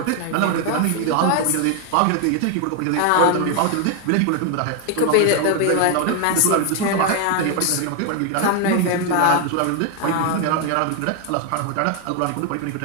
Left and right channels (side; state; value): both; different; correlation 0.00